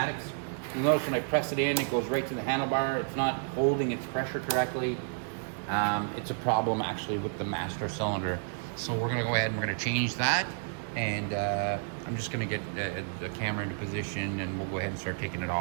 You'll notice when I press it in, it goes right to the handlebar. It's not holding its pressure correctly. It's a problem actually with the master cylinder. So we're going to go ahead and we're going to change that. And I'm just going to get the camera into position, and we'll go ahead and start taking it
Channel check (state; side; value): silent; left; digital silence